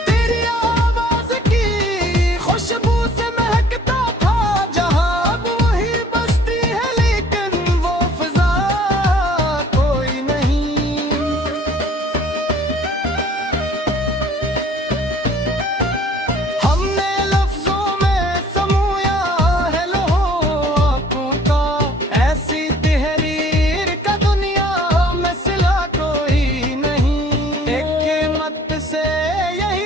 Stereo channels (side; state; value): both; normal; correlation 0.54